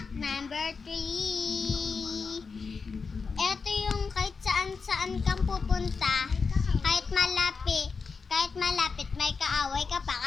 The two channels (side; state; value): right; quieter; 5.0 dB